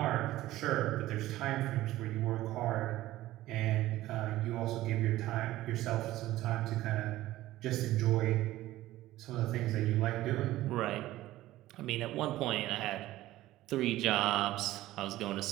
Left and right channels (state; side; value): quieter; left; 15.8 dB